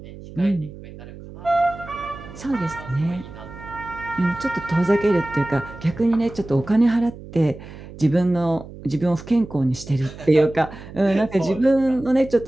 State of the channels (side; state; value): right; noise; hum, 15 dB below the sound